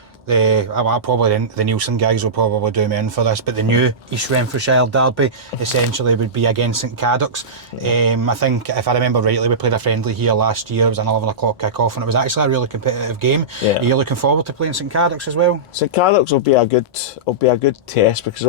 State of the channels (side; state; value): both; normal; correlation -0.17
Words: the Nielsen guys will probably do me in for this, but the new East Renfrewshire derby essentially would be against St Cadoc's. I think, if I remember rightly, we played a friendly here last year. It was an 11 o'clock kick-off and it was actually a really competitive game. Are you looking forward to playing St Cadoc's as well? St Cadoc's will be a good test, because